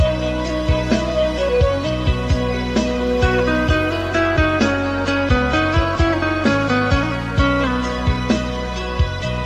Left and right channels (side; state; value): both; identical; correlation 1.00